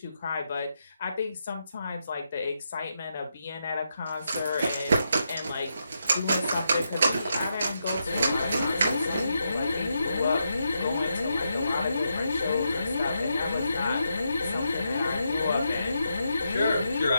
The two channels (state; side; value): inverted; both; correlation -0.83